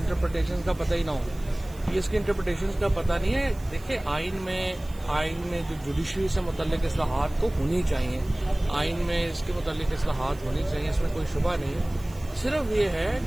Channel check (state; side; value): noise; right; hiss, 23 dB below the sound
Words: का पता ही ना हो। ये इसके इंटरप्रिटेशन का पता नहीं है। देखिए, आइन में जो जुडिशरी से मुतल्लिक इस्लाहात तो होनी चाहिए, आइन में इसके मुतल्लिक इस्लाहात होनी चाहिए, इसमें कोई शुबा नहीं है। सिर्फ ये है